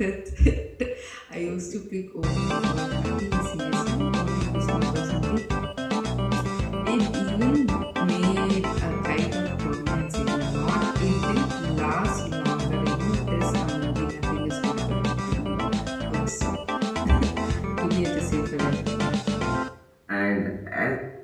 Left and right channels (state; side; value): identical; both; correlation 1.00